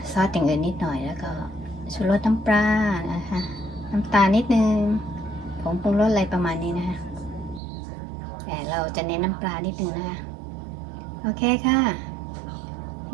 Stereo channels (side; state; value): left; drops out; at 7.6 s